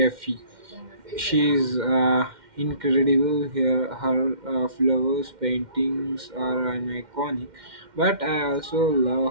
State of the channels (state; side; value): late; left; 2.1 ms